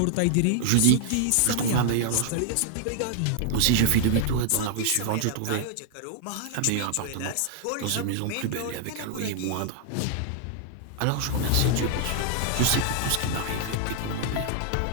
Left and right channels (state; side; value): different; both; correlation 0.00